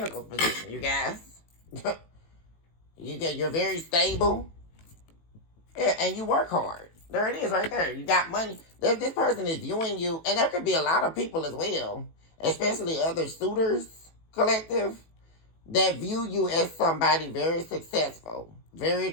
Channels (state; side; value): late; right; 18 ms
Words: position, you guys. You're very stable. Yeah, and you work hard. There it is right there. You got money. This person is viewing you, and there could be a lot of people as well, especially other suitors collective, that view you as somebody very successful, very